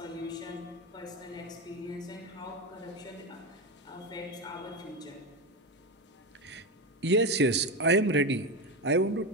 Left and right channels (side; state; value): both; normal; correlation 0.16